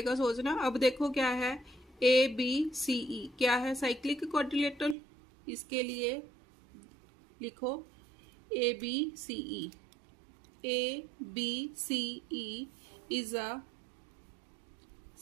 सोचना। अब देखो क्या है? ABCE क्या है? Cyclic quadrilateral. इसके लिए लिखो ABCE। ABCE is a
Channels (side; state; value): left; drops out; at 5.0 s